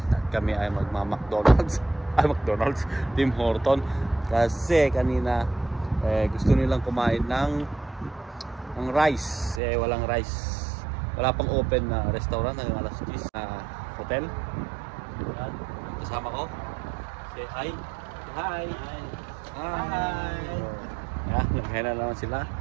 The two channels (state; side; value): drops out; left; at 9.6 s